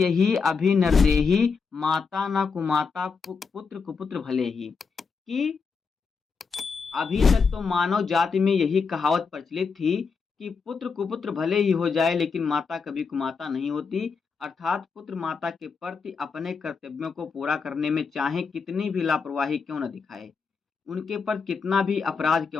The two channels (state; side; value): quieter; right; 5.2 dB